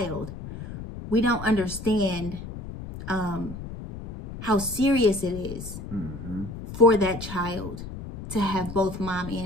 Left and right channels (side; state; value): left; noise; rumble, 10 dB below the sound